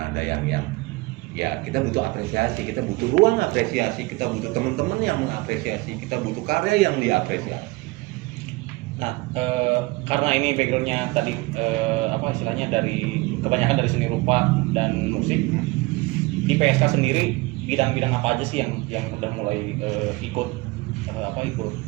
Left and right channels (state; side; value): quieter; left; 22.7 dB